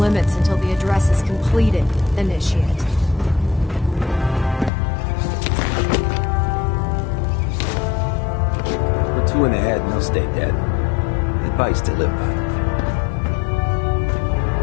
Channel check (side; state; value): right; drops out; at 4.7 s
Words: until the address is completed. Initiate. Put two in the head and they'll stay dead. Advice to live by.